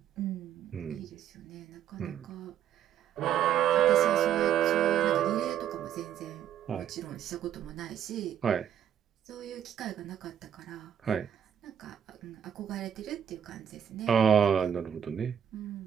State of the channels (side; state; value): left; quieter; 9.5 dB